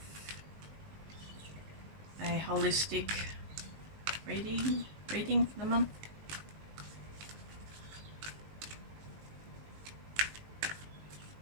a holistic reading for the month.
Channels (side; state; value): left; late; 19 ms